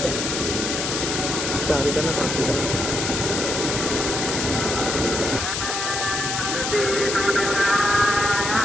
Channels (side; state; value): left; noise; hiss, 2 dB below the sound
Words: चारी का ना पांच का